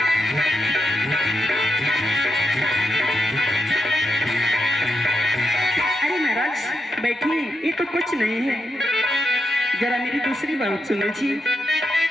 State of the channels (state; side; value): normal; both; correlation 0.85